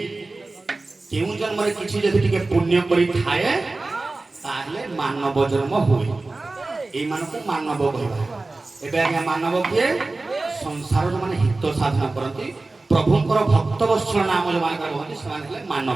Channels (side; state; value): left; quieter; 3.3 dB